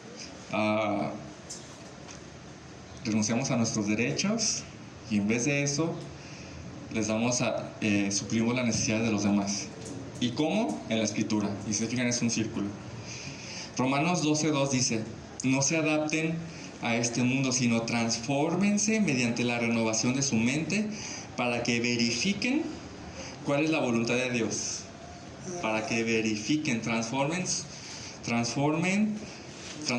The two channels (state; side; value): identical; both; correlation 1.00